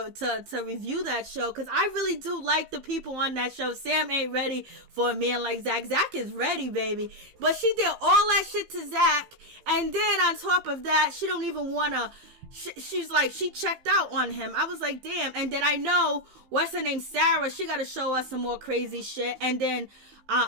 review that show, because I really do like the people on that show. Sam ain't ready for a man like Zach. Zach is ready, baby. But she did all that shit to Zach, and then on top of that, she don't even wanna. She's like, she checked out on him. I was like, damn. And then I know, what's her name, Sarah, she gotta show us some more crazy shit. And then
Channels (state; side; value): late; left; 15 ms